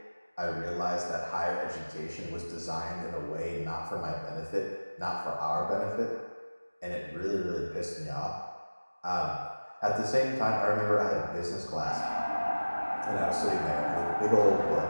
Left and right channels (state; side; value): inverted; both; correlation -1.00